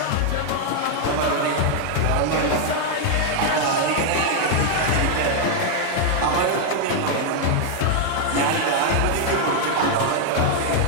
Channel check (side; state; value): both; different; correlation 0.00